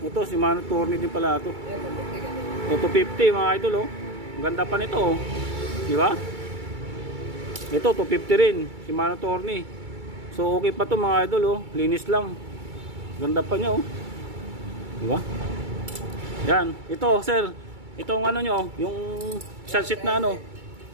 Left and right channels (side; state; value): left; late; 2.3 ms